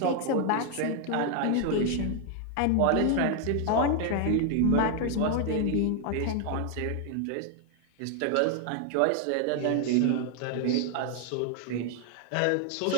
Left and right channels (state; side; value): different; both; correlation 0.00